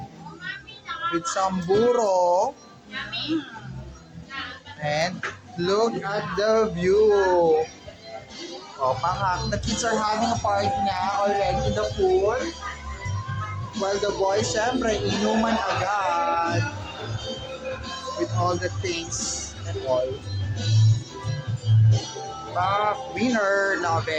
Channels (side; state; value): both; identical; correlation 1.00